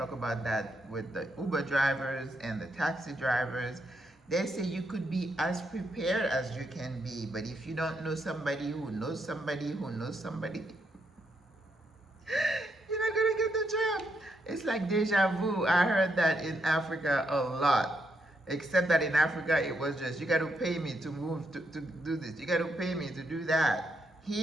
about that with the Uber drivers and the taxi drivers. They say you could be as prepared as you can be, but if you don't know somebody who knows somebody who knows somebody, you're not gonna get the job. It's like deja vu. I heard that in Africa a lot. Except that in Africa it was just, you got to pay me to move to do this. You got to pay me to do that.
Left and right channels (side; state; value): both; normal; correlation 0.79